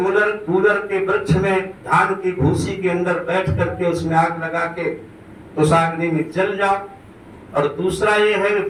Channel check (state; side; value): identical; both; correlation 1.00